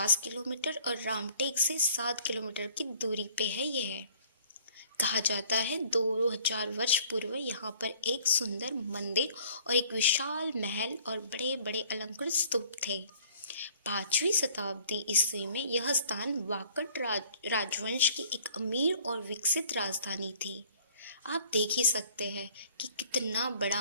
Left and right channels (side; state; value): both; inverted; correlation -0.55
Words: किलोमीटर और रामटेक से 7 किलोमीटर की दूरी पे है यह। कहा जाता है 2000 वर्ष पूर्व यहाँ पर एक सुंदर मंदिर और एक विशाल महल और बड़े बड़े अलंकृत स्तूप थे। 5वीं शताब्दी ईस्वी में यह स्थान वाकट राजवंश की एक अमीर और विकसित राजधानी थी। आप देख ही सकते हैं कि कितना